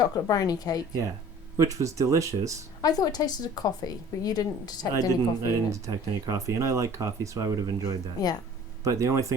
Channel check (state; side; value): normal; both; correlation 0.48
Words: brownie cake. Yeah, which was delicious. I thought it tasted of coffee, but you didn't detect any coffee. I didn't detect any coffee, and I like coffee, so I would have enjoyed that. Yeah. But the only